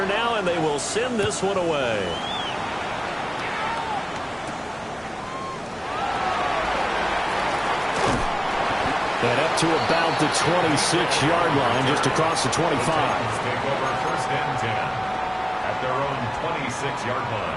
now, and they will send this one away. And up to about the 26-yard line, just across the 25. Take over 1st and 10 at their own 26-yard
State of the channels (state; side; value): identical; both; correlation 1.00